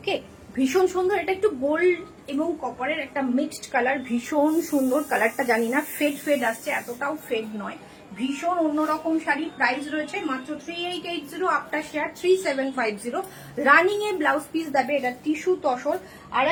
ভীষণ সুন্দর। এটা একটু গোল্ড এবং কপারের একটা মিক্সড কালার, ভীষণ সুন্দর কালারটা। জানি না ফেড আসছে, এতটাও ফেড নয়, ভীষণ অন্যরকম শাড়ি। প্রাইস রয়েছে মাত্র 3880, আফটার শেয়ার 3750। রানিং এ ব্লাউজ পিস দেবে, এটা টিস্যু তসর। আর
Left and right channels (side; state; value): both; identical; correlation 1.00